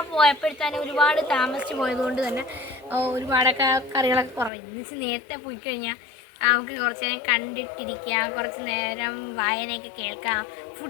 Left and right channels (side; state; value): right; drops out; at 4.5 s